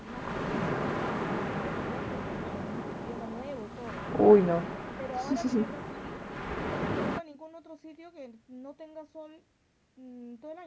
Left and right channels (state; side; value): identical; both; correlation 1.00